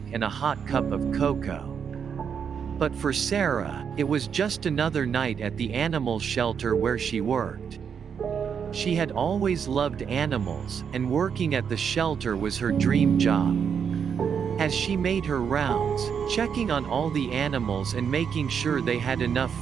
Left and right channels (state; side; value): quieter; left; 7.2 dB